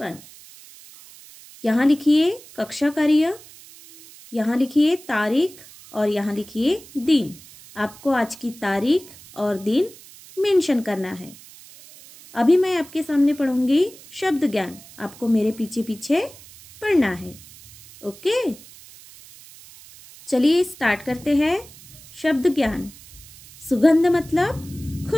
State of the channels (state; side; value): noise; right; hiss, 20 dB below the sound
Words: यहाँ लिखिए कक्षा कार्य, यहाँ लिखिए तारीख और यहाँ लिखिए दिन। आपको आज की तारीख और दिन मेंशन करना है। अभी मैं आपके सामने पढ़ूंगी शब्द ज्ञान, आपको मेरे पीछे पीछे पढ़ना है। ओके, चलिए स्टार्ट करते हैं। शब्द ज्ञान। सुगंध मतलब